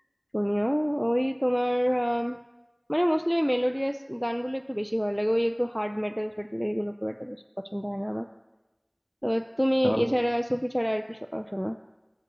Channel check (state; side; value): identical; both; correlation 1.00